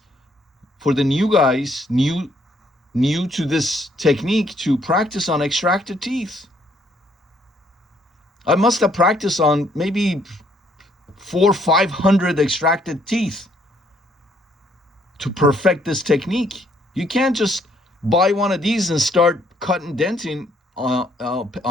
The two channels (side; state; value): both; normal; correlation 0.67